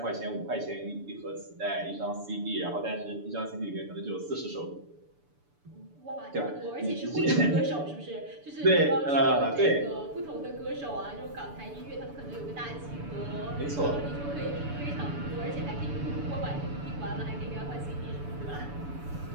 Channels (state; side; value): late; left; 6.9 ms